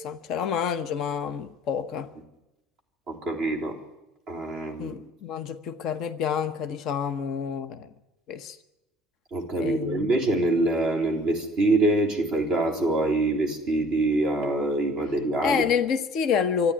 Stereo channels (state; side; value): normal; both; correlation 0.52